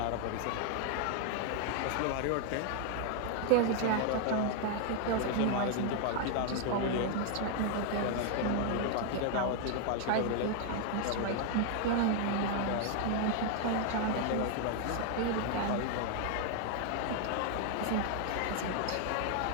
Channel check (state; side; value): different; both; correlation 0.00